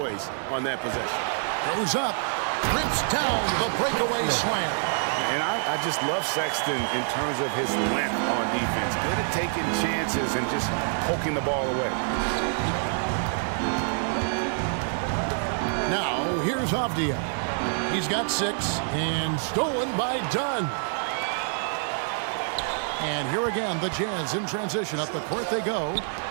on that possession. Goes up. Rips down the breakaway slam. And I just love Sexton in terms of his length on defense. Good at taking chances and just poking the ball away. Now, here's Avdia. He's got 6 and stolen by Dunn. And here again, the Jazz in transition. Up the court they go.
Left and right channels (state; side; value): silent; left; digital silence